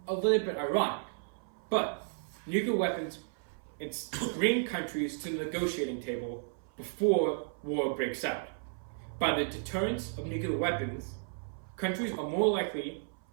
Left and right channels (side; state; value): left; silent; 55 dB below the other